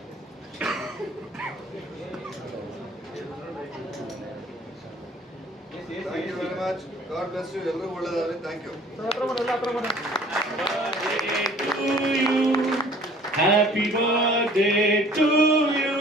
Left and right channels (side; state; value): both; normal; correlation 0.52